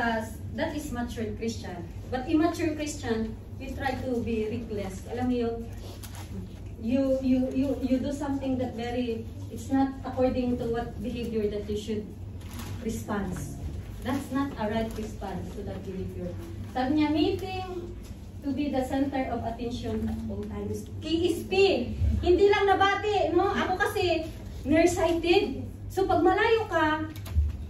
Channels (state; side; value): identical; both; correlation 1.00